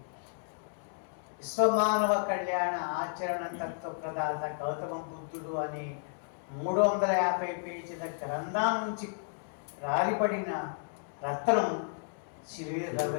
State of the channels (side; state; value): right; silent; digital silence